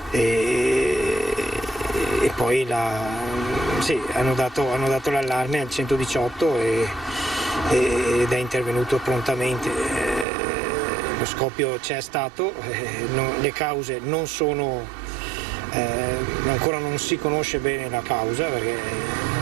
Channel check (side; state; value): left; drops out; at 10.2 s